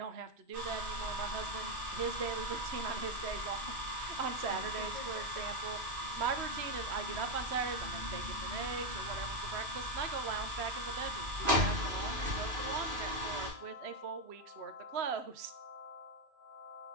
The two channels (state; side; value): late; left; 3.0 ms